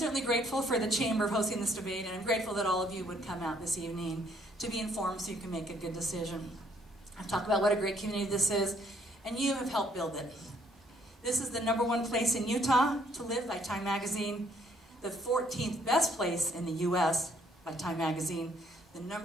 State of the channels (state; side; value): normal; both; correlation 0.66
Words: grateful for the Chamber of hosting this debate, and I'm grateful that all of you would come out this evening to be informed so you can make a good decision. I've talked about what a great community this is, and you have helped build it. This is the #1 place in Utah to live by Time Magazine, the 14th best place in the U.S. by Time Magazine, the